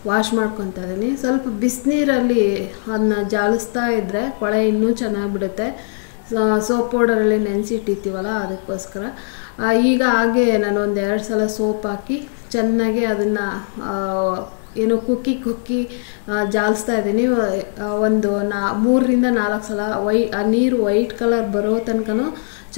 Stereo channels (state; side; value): silent; right; 66 dB below the other